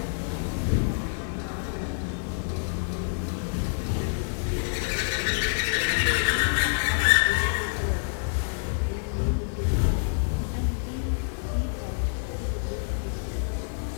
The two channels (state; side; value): silent; right; digital silence